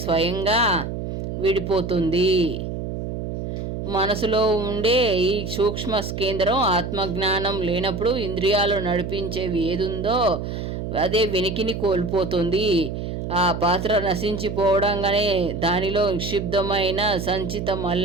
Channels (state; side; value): noise; right; hum, 5 dB below the sound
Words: స్వయంగా విడిపోతుంది. మనసులో ఉండే ఈ సూక్ష్మ కేంద్రం ఆత్మజ్ఞానం లేనప్పుడు ఇంద్రియాలు నడిపించేవి ఏదుందో అదే వెనికిని కోల్పోతుంది. ఆ పాత్ర నశించిపోవడంగానే దానిలో నిక్షిప్తమైన సంచిత